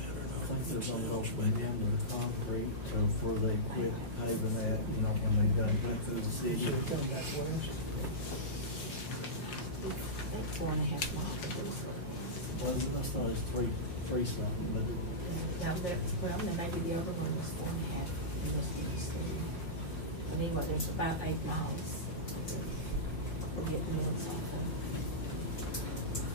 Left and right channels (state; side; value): late; right; 5.6 ms